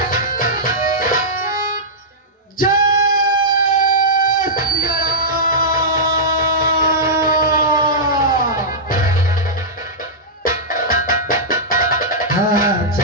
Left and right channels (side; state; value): both; normal; correlation -0.12